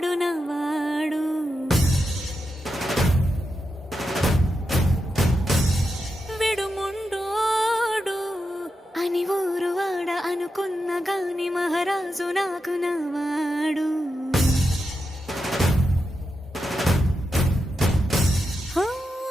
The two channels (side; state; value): both; normal; correlation 0.88